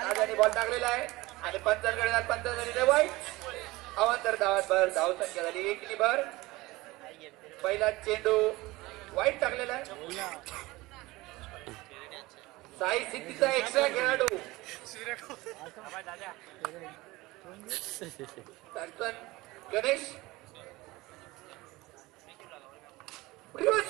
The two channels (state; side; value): quieter; left; 20.5 dB